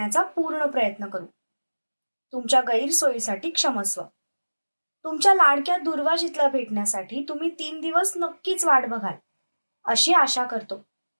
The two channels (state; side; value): inverted; both; correlation -1.00